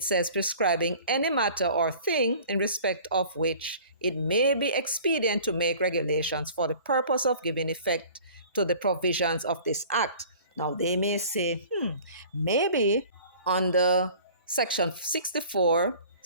says prescribing any matter or thing in respect of which it may be expedient to make regulations for the purpose of giving effect to the provisions of this act. Now, they may say, maybe under section 64,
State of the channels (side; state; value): both; inverted; correlation -0.47